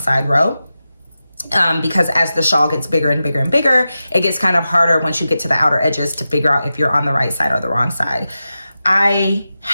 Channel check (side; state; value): both; inverted; correlation -0.92